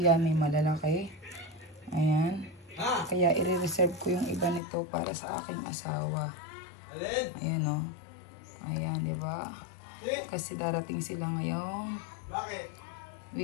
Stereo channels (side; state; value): right; drops out; at 4.6 s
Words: may malalaki. Ayan. Kaya i-reserve ko yung iba nito para sa aking asawa. Ayan o. Ayan, di ba? Kasi darating sila ngayong